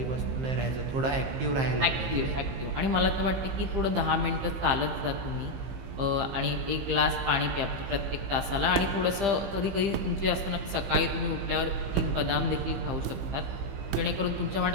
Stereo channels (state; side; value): late; left; 15 ms